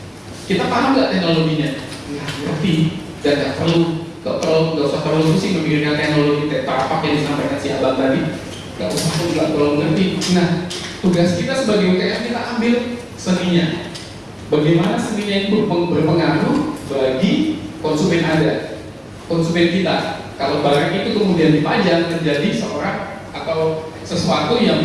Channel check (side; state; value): both; identical; correlation 1.00